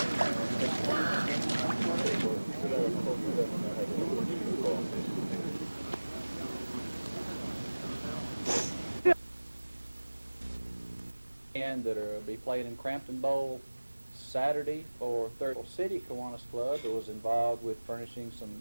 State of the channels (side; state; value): both; inverted; correlation -1.00